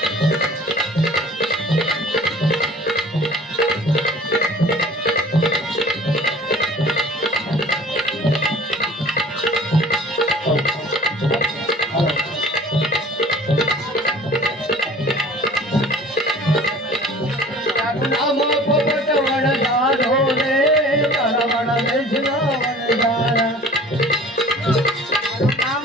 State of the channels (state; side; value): normal; both; correlation 0.47